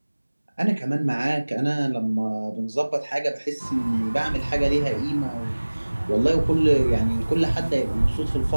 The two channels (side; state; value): both; inverted; correlation -1.00